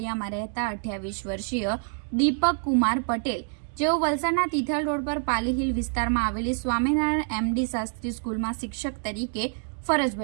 રહેતા 28 વર્ષીય દીપક કુમાર પટેલ, જેઓ વલસાડના તિથલ રોડ પર પાલી હિલ વિસ્તારમાં આવેલી સ્વામિનારાયણ એમડી શાસ્ત્રી સ્કૂલમાં શિક્ષક તરીકે ફરજ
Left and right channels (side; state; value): left; silent; 60 dB below the other